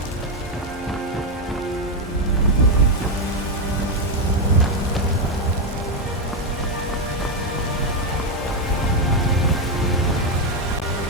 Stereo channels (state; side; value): normal; both; correlation 0.05